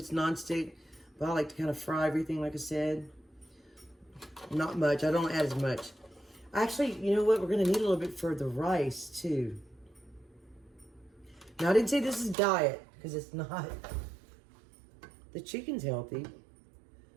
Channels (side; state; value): left; drops out; at 12.4 s